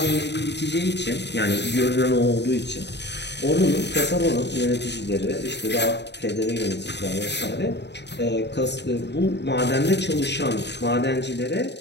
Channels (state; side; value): late; right; 0.50 ms